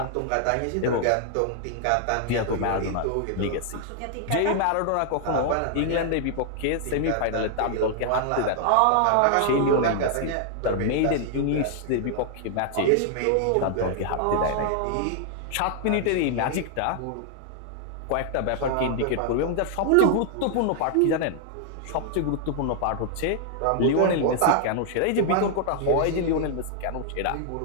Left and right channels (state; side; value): different; both; correlation -0.01